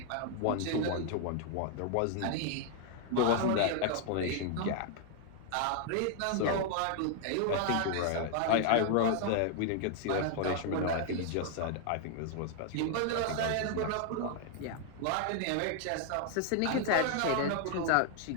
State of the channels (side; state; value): both; different; correlation 0.00